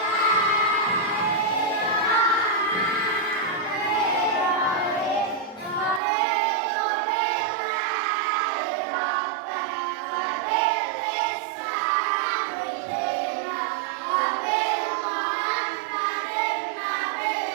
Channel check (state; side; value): drops out; left; at 6.0 s